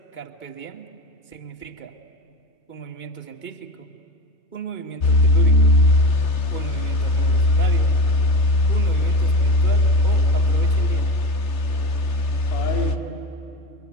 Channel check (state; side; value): late; right; 3.3 ms